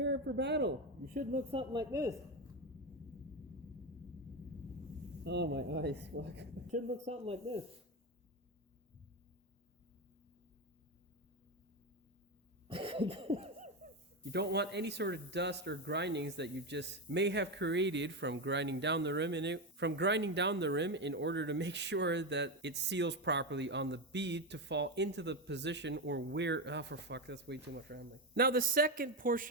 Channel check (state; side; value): normal; both; correlation 0.13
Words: for battle. You should look something like this. Oh, my eyes, fuck. Should look something like this. You don't want any sort of dust or grindings that you just may have created from grinding down the rim in order to make sure that it seals properly on the bead to fall into the position or where... Oh, for fuck, that's way too much rambling. Now the second